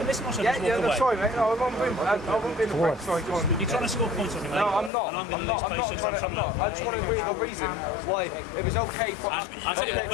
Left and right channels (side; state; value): right; drops out; at 4.9 s